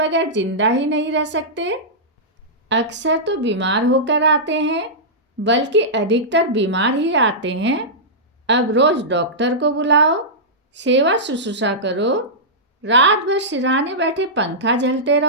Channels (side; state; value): both; normal; correlation -0.14